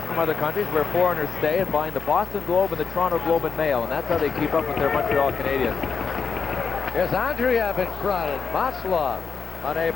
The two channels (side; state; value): right; quieter; 5.7 dB